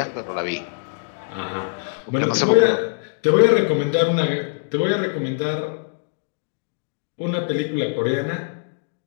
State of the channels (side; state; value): right; silent; digital silence